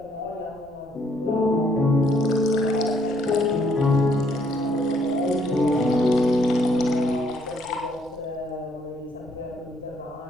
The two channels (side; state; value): left; noise; rumble, 28 dB below the sound